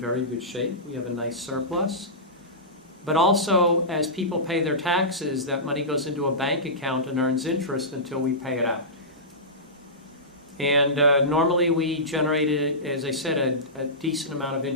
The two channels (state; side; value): normal; both; correlation -0.18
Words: good shape. We have a nice surplus. But also, as people pay their taxes, that money goes into a bank account and earns interest until we pay it out. And normally we generated, as I said, a decent amount of